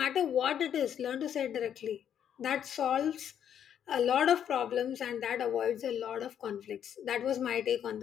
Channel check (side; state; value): right; quieter; 9.2 dB